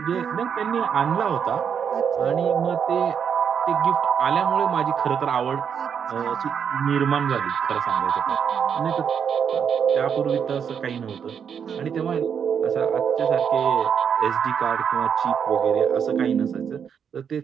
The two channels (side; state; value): left; quieter; 7.5 dB